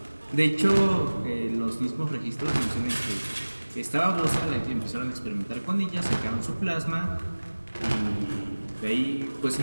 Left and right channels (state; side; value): inverted; both; correlation -1.00